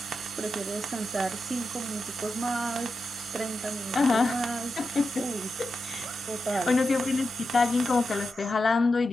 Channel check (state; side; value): normal; both; correlation 0.89